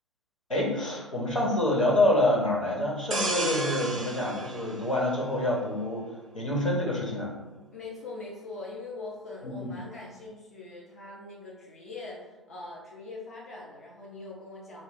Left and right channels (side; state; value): both; normal; correlation 0.40